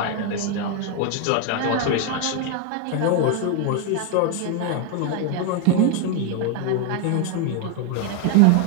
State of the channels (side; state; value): both; different; correlation 0.01